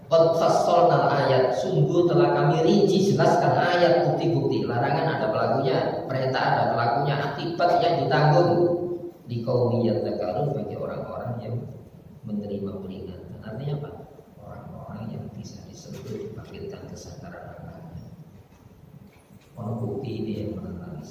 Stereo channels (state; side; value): identical; both; correlation 1.00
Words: qad fassalnal ayat, sungguh telah kami rinci jelaskan ayat bukti-bukti. Larangan ada pelakunya, perintah ada pelakunya, akibat yang ditanggung. Di qaumi yadzakkarun, bagi orang-orang yang menerima peringatan. Artinya apa? Orang-orang yang bisa disebut dibangkitkan kesadaran akalnya. Orang bukti ini yang menentang